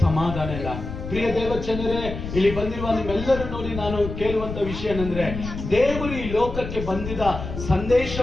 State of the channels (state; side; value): noise; left; rumble, 8 dB below the sound